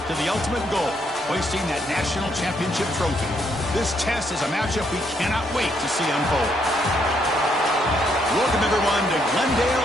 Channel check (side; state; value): both; normal; correlation 0.74